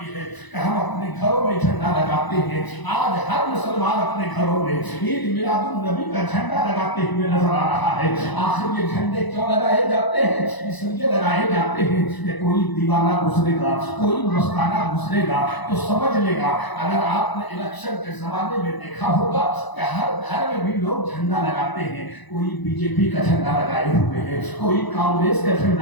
है कि हम अपने घरों में झंडा लगाते हैं। आज हर मुसलमान अपने घरों में ईद मिलादुन नबी का झंडा लगाते हुए नजर आ रहा है। आखिर ये झंडे क्यों लगाए जाते हैं? इसलिए लगाए जाते हैं कि कोई दीवाना गुजरेगा, कोई मस्ताना गुजरेगा तो समझ लेगा। अगर आपने इलेक्शन के जमाने में देखा होगा कि हर घर में भी लोग झंडा लगाते हैं। कोई बीजेपी का झंडा लगाए हुए है, कोई कांग्रेस का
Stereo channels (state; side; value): late; right; 1.0 ms